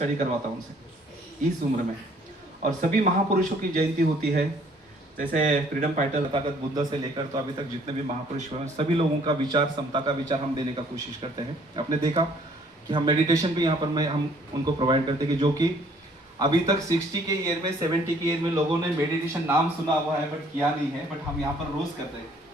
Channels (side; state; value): both; normal; correlation 0.60